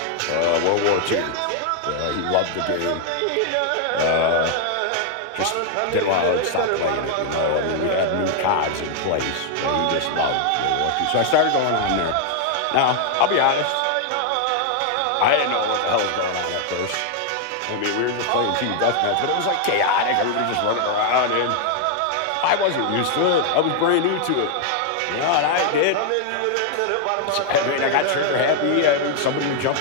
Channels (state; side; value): different; both; correlation 0.00